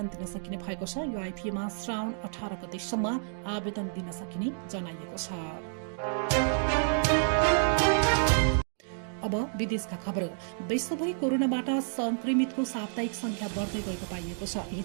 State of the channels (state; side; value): silent; left; digital silence